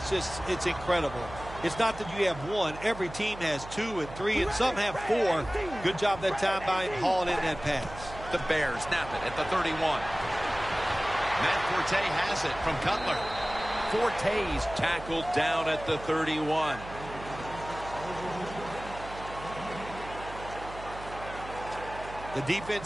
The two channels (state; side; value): noise; right; hum, 13 dB below the sound